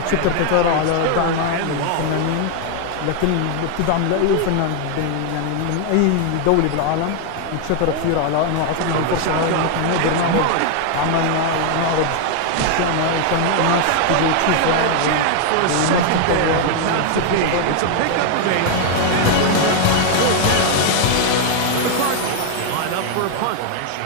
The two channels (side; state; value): both; different; correlation 0.00